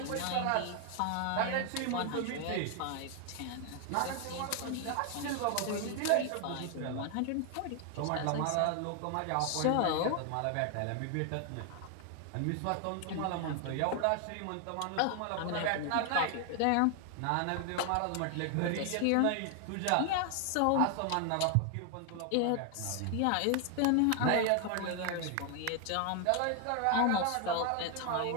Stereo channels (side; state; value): both; different; correlation 0.00